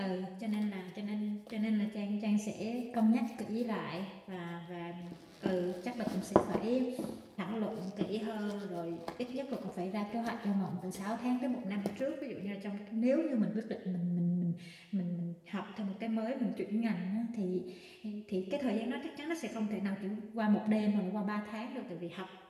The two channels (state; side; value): identical; both; correlation 1.00